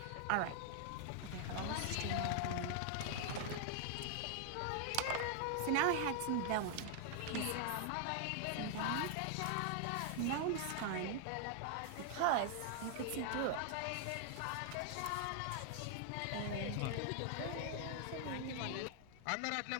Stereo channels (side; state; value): both; different; correlation 0.00